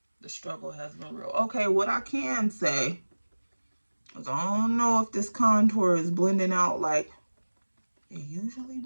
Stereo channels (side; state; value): both; inverted; correlation -1.00